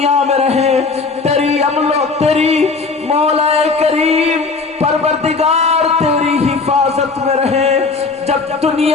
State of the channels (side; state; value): right; quieter; 4.3 dB